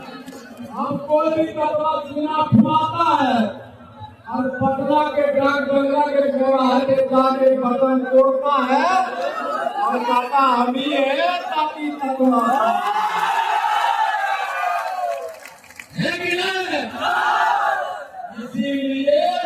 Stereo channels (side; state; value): both; identical; correlation 1.00